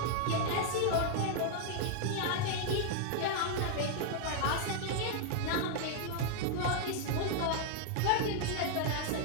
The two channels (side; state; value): both; different; correlation 0.00